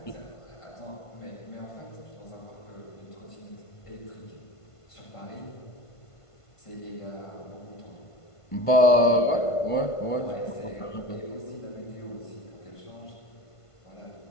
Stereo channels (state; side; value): late; right; 1.5 ms